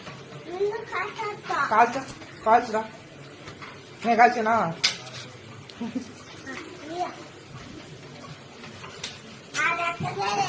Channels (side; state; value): both; identical; correlation 1.00